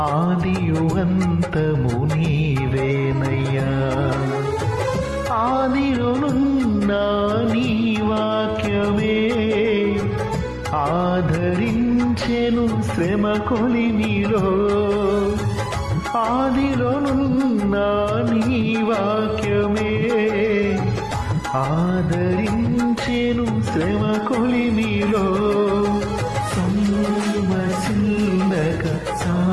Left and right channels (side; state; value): both; identical; correlation 1.00